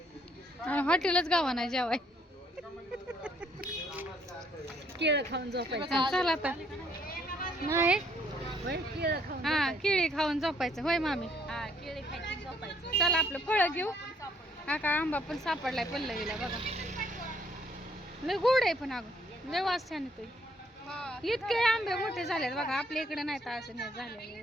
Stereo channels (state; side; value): normal; both; correlation 0.66